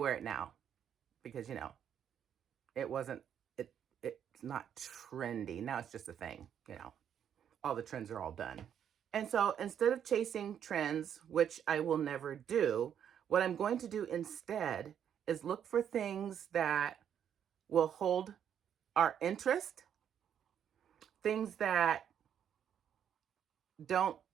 it now. because, you know, it wasn't, it, it's not trendy. Now it's just a thing, you know, all the trends are all done. And so instead of chasing trends, which I will never do, what I'm going to do instead is look for things that will hold our interest, things that don't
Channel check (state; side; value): quieter; left; 8.9 dB